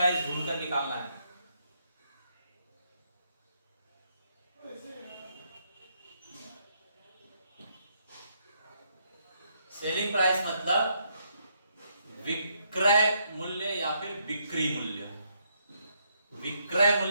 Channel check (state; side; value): inverted; both; correlation -0.75